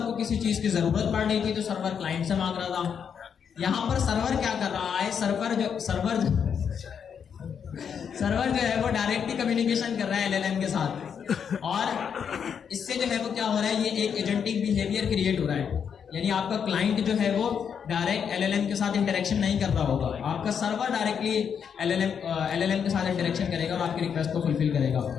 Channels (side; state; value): right; quieter; 7.3 dB